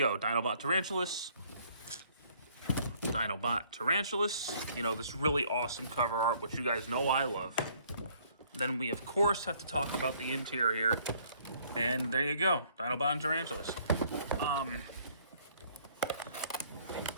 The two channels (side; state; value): both; inverted; correlation -0.62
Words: Dinobot Tarantulas, Dinobot Tarantulas. You know, this really awesome cover art, which you guys know I love. Then we, of course, have to talk about the interior. And there you go, Dinobot and Tarantulas.